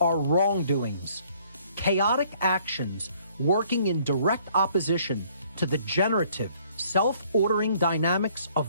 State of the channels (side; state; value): both; inverted; correlation -0.61